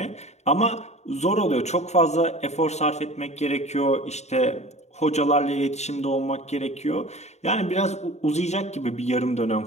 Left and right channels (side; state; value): right; late; 0.32 ms